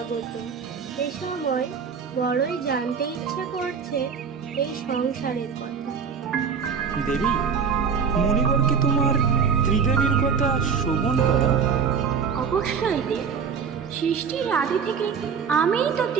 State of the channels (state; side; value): quieter; left; 6.3 dB